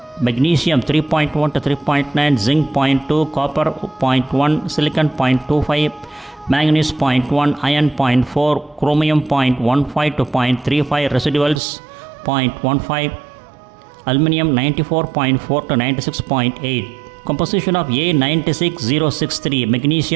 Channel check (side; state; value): left; drops out; at 11.6 s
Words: magnesium 3.1 to 3.9, zinc 0.2, copper 0.1, silicon 0.25, manganese 0.1, iron 0.4, chromium 0.15 to 0.35, residuals 0.15, aluminum 94.4 to 96.8. Composition of A96063,